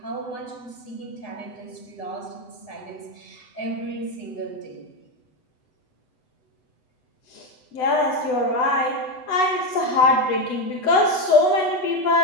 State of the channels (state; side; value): late; right; 8.0 ms